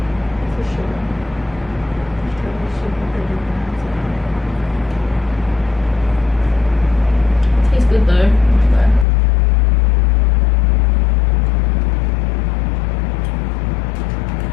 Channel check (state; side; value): drops out; right; at 9.1 s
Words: For sure. Tastes good though.